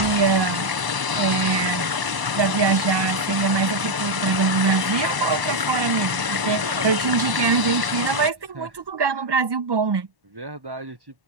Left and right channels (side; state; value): left; late; 1.0 ms